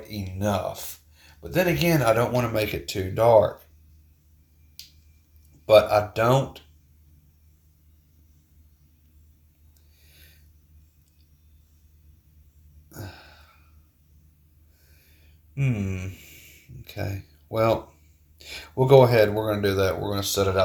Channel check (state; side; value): identical; both; correlation 1.00